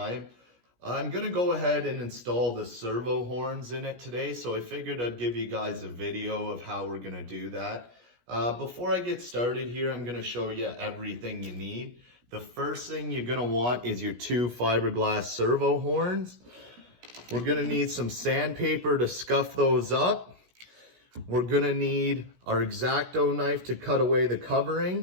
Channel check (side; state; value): left; late; 17 ms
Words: I'm gonna go ahead and install the servo horns in it today, so I figured I'd give you guys a video of how we're gonna do that. Before I get started here, I'm gonna show you everything you need. The first thing you're gonna want is your two fiberglass servo horns. We're gonna need some sandpaper to scuff those up. We're gonna need our X-Acto knife to cut away the